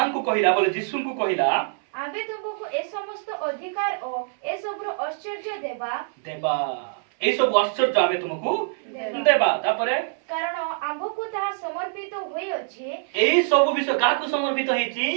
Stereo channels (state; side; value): silent; left; 62 dB below the other